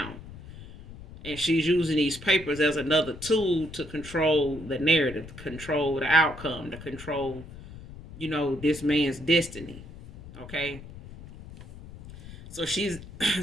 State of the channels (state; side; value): noise; left; rumble, 15 dB below the sound